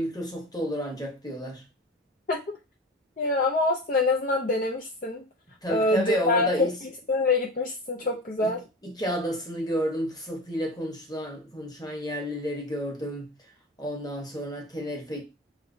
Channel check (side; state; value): both; normal; correlation 0.30